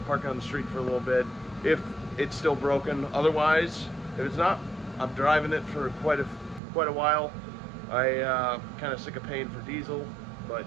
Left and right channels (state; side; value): drops out; left; at 6.6 s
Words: park it on the street for a little bit, if it's still broken. Otherwise, if it's not, I'm driving it for quite a while. I kind of sick of paying for diesel, but